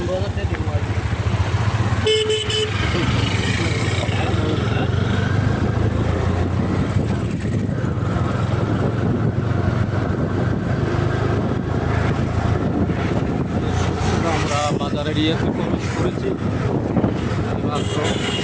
আমরা বাজার এরিয়াতে প্রবেশ করেছি মাত্র।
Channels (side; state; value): both; identical; correlation 1.00